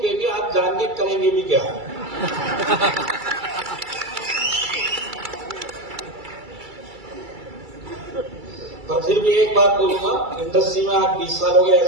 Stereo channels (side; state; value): left; late; 2.3 ms